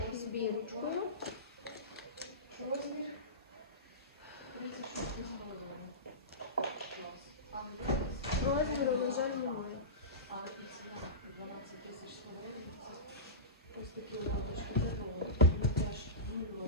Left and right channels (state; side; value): normal; both; correlation -0.18